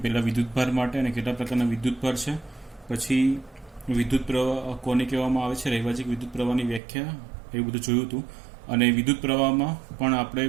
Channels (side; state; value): left; drops out; at 6.8 s